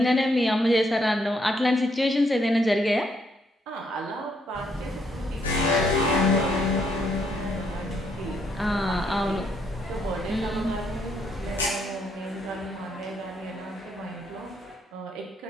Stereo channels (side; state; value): both; normal; correlation 0.73